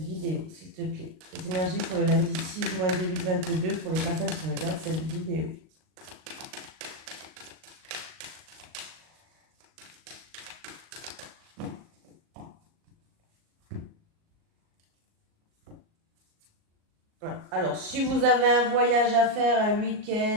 s'il te plaît. Les énergies pour le lundi 6 juin 2022 pour les personnes qui regardent cette vidéo. Alors, si vous avez un voyage à faire, un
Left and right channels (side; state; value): left; late; 38 ms